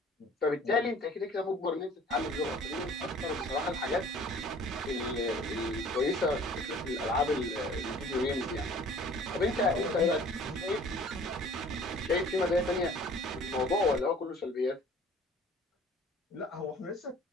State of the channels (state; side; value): normal; both; correlation 0.50